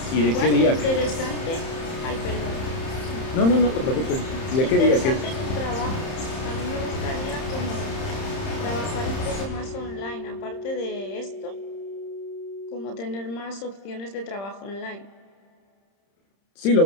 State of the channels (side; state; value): right; late; 30 ms